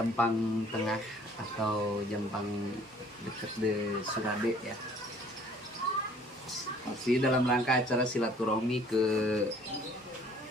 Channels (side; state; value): both; normal; correlation 0.55